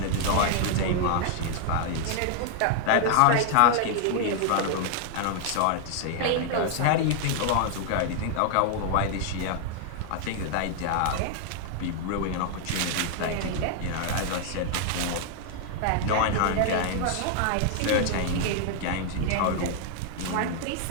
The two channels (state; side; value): different; both; correlation 0.00